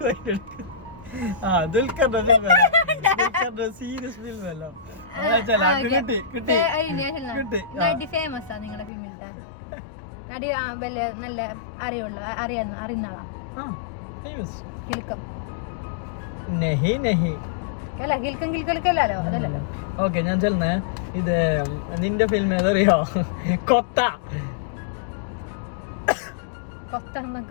ദുൽഖറിന്റെ സീരിയസ് ഫിലിം അല്ലോ ഫേമസ് ആ നിങ്ങളുടെ ഫിലിമിലത്തെ നടി നല്ല അറിയുന്ന ആളാ കിൽക്കം അല്ല കിൽക്കം കിൽക്കല്ലോ അതല്ലല്ലോ ഓക്കെ ഞാൻ ചെല്ലുന്നേ ഇത് നിന്റെ ഫിലിം ഏതറിയോ കൊത്ത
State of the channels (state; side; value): drops out; right; at 8.9 s